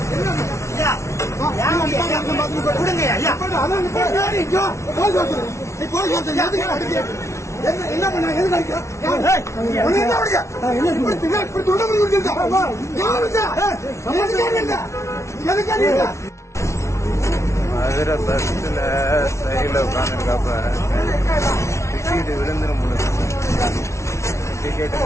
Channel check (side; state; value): right; late; 0.13 ms